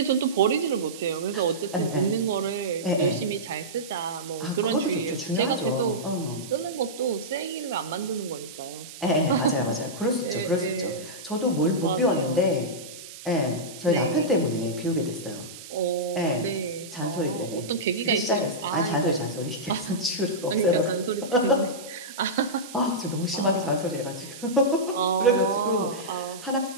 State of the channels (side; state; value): right; noise; hiss, 15 dB below the sound